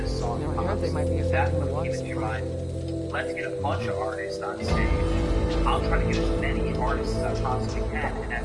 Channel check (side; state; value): both; identical; correlation 1.00